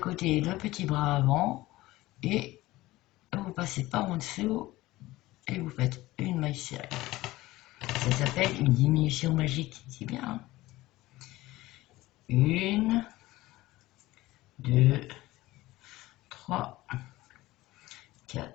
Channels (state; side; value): quieter; right; 18.1 dB